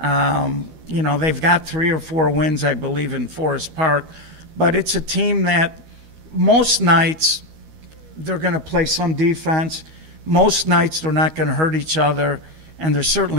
got 3 or 4 wins, I believe, in Forest Park. But it's a team that most nights they're going to play some defense. Most nights they're not going to hurt each other. And they're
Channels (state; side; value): late; left; 13 ms